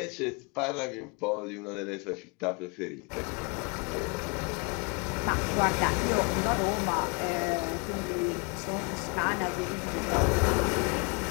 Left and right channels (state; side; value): quieter; right; 33.0 dB